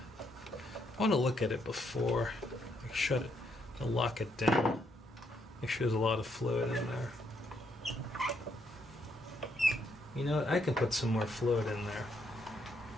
want to look at it before I shut it and lock it down. Make sure there's a lot of fluid in there. You know what? I can put some more fluid in there.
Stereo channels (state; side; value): normal; both; correlation 0.74